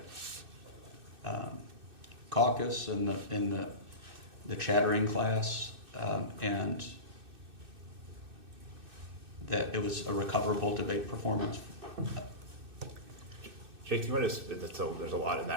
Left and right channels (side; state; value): left; late; 2.6 ms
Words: caucus and the chattering class, and that it was a recoverable debate performance? Jake, do you want to, there's a lot in